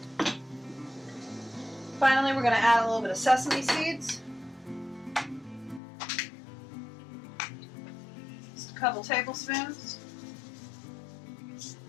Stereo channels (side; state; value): right; drops out; at 5.8 s